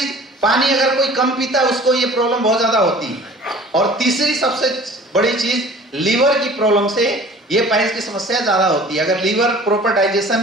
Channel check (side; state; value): both; normal; correlation 0.46